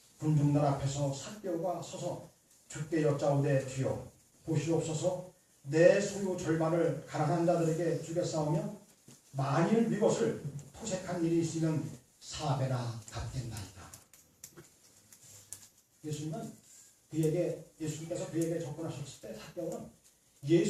군중들 앞에서 삭개오가 서서 주께 여짜오되 주여 보시옵소서 내 소유 절반을 가난한 자들에게 주겠사오며 만일 이것을 토색한 일이 있으면 4배나 갚겠나이다. 예수님께서 그에게 접근하셨을 때 삭개오는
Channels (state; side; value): identical; both; correlation 1.00